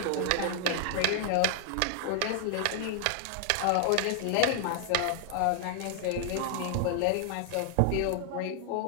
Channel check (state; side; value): different; both; correlation 0.00